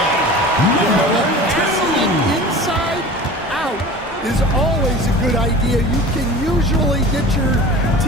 Testing inside out is always a good idea. You can usually get your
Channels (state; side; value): normal; both; correlation 0.39